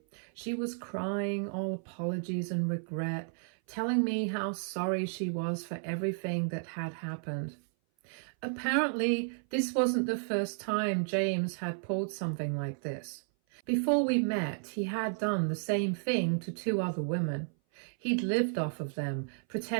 She was crying all apologies and regret, telling me how sorry she was for everything that had happened. Apparently, this wasn't the first time James had pulled something like this. Before we met, he had done the same thing to 2 other women. He'd lived off of them,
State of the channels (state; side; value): silent; left; 56 dB below the other